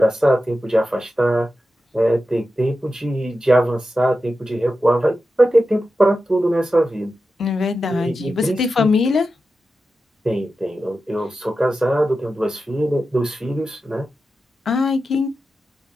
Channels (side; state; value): both; normal; correlation 0.91